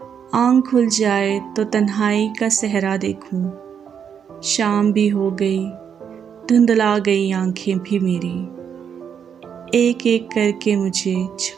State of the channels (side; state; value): left; quieter; 7.7 dB